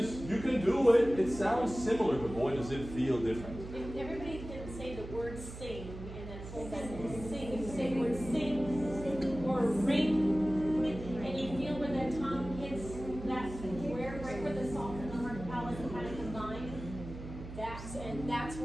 you can do it. It sounds similar, but boy, does it feel different. If everybody can say the word sing in that whole sentence. Sing. If you say the word sing or ring, and you feel where that tongue hits that square, right where the soft and the hard palate kind of combine, that's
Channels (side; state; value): right; noise; hum, 11 dB below the sound